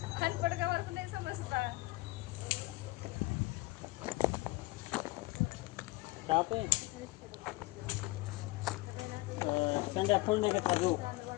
अनपड गावावर नाही समजता संध्या फुल नाही घेतला जो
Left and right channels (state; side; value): quieter; right; 21.3 dB